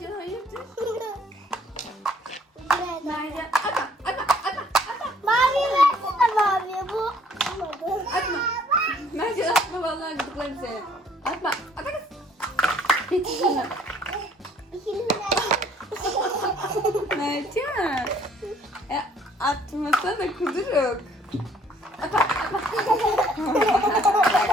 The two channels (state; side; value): normal; both; correlation 0.60